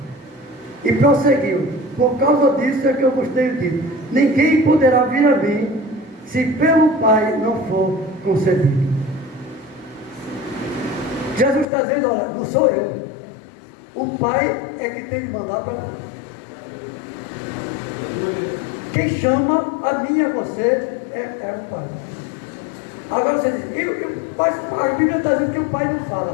E prosseguiu: por causa disso é que eu vos tenho dito: ninguém poderá vir a mim, se pelo Pai não for concedido. Jesus está dizendo: olha, não sou eu. O Pai é que tem de mandar para mim. Quem chama a mim e a você é o Pai. Agora você diz: a Bíblia está dizendo que o Pai não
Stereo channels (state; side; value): drops out; right; at 11.7 s